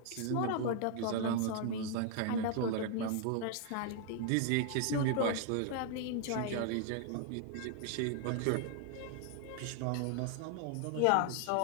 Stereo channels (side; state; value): both; different; correlation 0.00